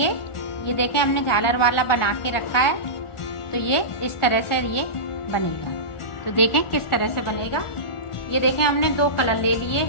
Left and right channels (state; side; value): late; right; 1.4 ms